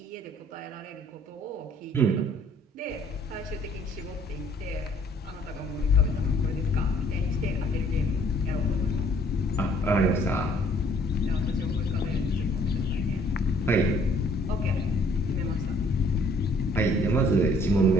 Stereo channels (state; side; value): normal; both; correlation 0.60